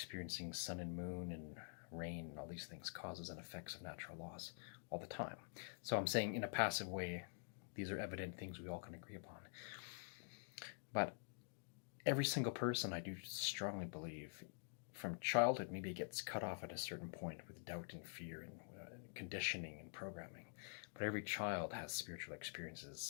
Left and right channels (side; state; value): right; silent; digital silence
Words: sun and moon and rain and all these things, causes and effects of natural laws all the time. So I'm saying in a passive way, these are evident things we all can agree upon. But every single person, I do strongly believe, from childhood maybe gets cut off at a certain point with doubt and fear and conditioning and programming. But every child has spiritual